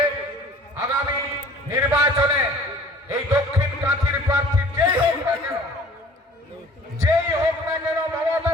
আগামী নির্বাচনে এই দক্ষিণ কাঁথির প্রার্থী যেই হোক না কেন, মমতা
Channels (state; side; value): normal; both; correlation 0.50